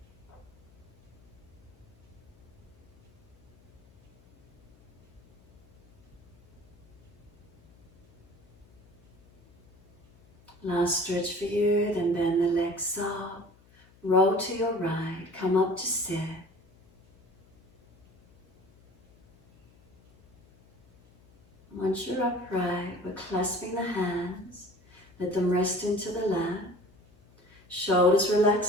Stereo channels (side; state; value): left; noise; hum, 29 dB below the sound